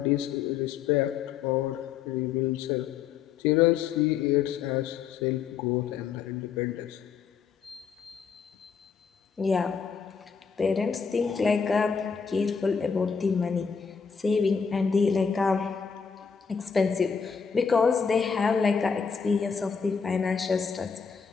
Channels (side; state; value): right; quieter; 6.3 dB